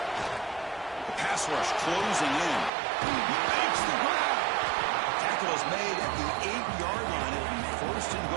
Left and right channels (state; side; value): drops out; left; at 2.7 s